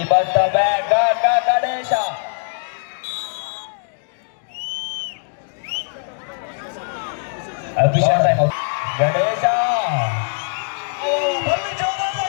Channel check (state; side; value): silent; right; 65 dB below the other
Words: ಬಂದ ಬ್ಯಾಗ್ ಗಣೇಶ. ಅಭಿಷೇಕ್ ಗಣೇಶ